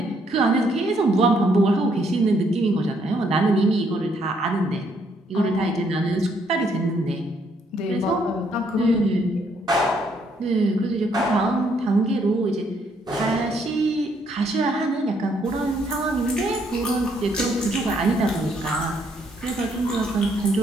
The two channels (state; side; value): normal; both; correlation 0.70